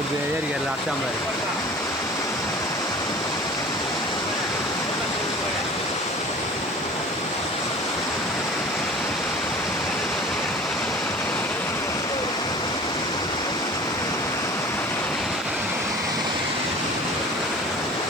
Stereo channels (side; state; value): right; noise; hiss, 24 dB below the sound